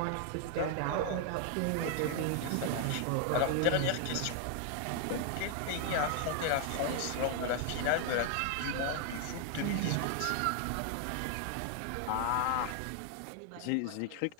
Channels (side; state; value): both; different; correlation 0.00